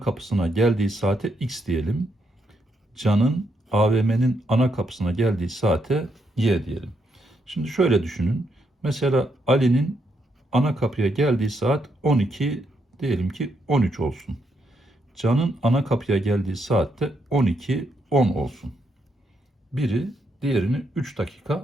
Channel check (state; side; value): normal; both; correlation 0.78